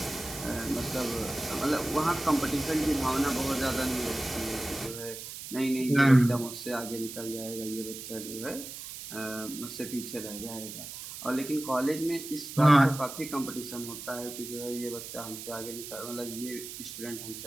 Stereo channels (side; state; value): right; noise; hiss, 10 dB below the sound